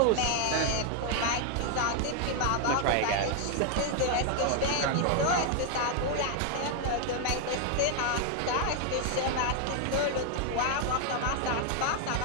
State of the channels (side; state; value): both; different; correlation 0.00